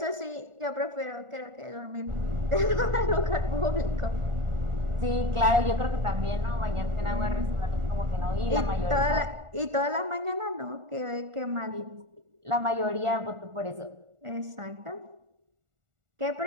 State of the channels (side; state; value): left; late; 1.4 ms